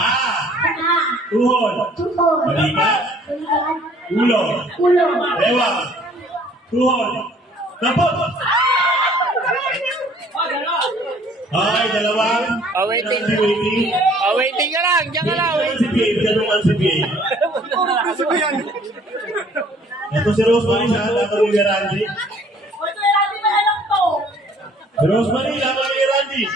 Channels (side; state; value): both; normal; correlation 0.57